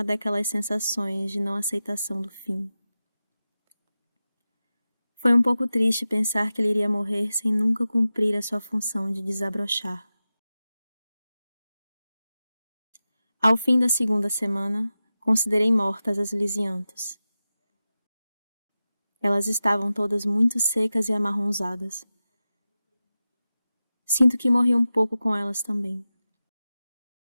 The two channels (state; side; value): inverted; both; correlation -0.93